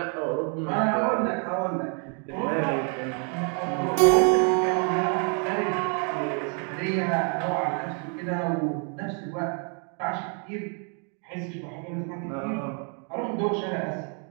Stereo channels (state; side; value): quieter; left; 39.8 dB